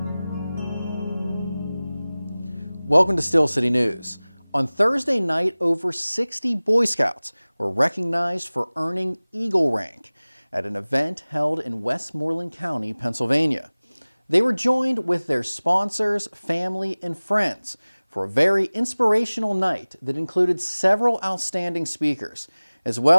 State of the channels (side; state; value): both; inverted; correlation -0.99